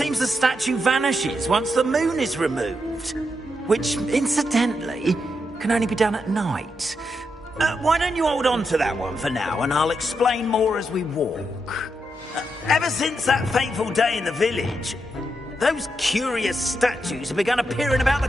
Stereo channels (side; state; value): both; normal; correlation 0.83